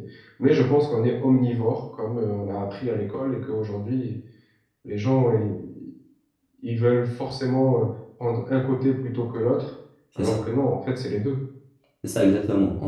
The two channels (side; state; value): both; identical; correlation 1.00